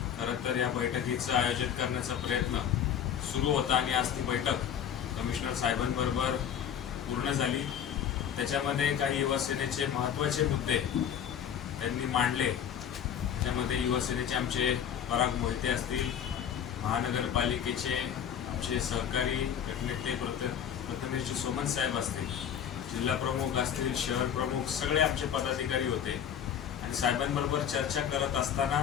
खरं तर या बैठकीचं आयोजन करण्याचा प्रयत्न सुरू होता आणि आज ती बैठक कमिशनर साहेबांबरोबर पूर्ण झाली। त्याच्यामध्ये काही युवा सेनेचे महत्त्वाचे मुद्दे त्यांनी मांडले। त्याच्यामध्ये युवा सेनेचे आमचे पराग मोहिते असतील, महानगरपालिकेचे आमचे सहकारी गटनेते प्रथमेश सोमन साहेब असतील, जिल्हा प्रमुख असतील, शहर प्रमुख, सगळे आमचे पदाधिकारी होते आणि साहेबांबरोबर चर्चा करत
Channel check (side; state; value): right; quieter; 8.9 dB